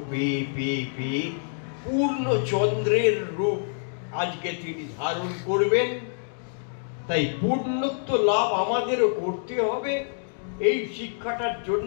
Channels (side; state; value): right; silent; digital silence